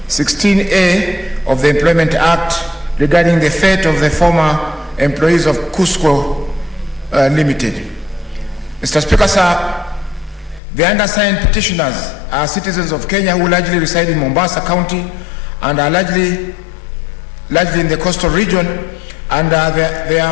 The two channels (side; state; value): right; drops out; at 10.6 s